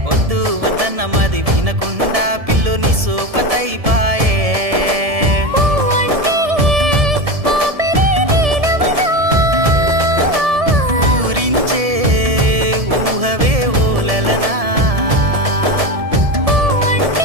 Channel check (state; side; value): late; left; 1.7 ms